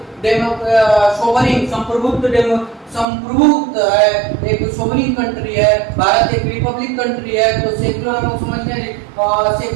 सोवरिन संप्रभुत्व है, एक सोवरिन कंट्री है। भारत एक रिपब्लिक कंट्री है। तो सेकुलर हम लोग समझते हैं,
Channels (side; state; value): left; drops out; at 3.1 s